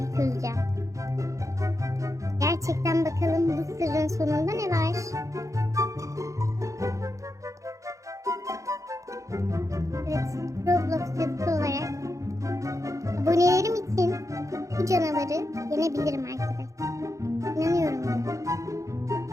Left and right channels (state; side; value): late; left; 0.15 ms